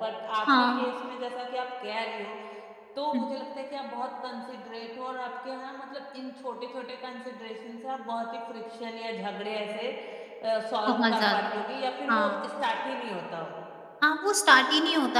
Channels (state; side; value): identical; both; correlation 1.00